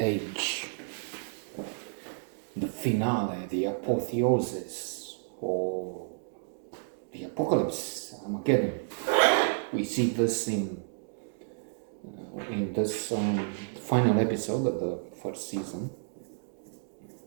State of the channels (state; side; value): silent; left; digital silence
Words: Age, the finale, the apotheosis, or the apocalypse, Armageddon. We see this in this final episode of the first season.